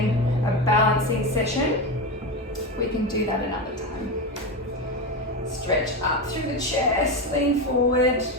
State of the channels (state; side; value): normal; both; correlation 0.16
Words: a balancing session. We can do that another time. Stretch up through the chest, lean forward.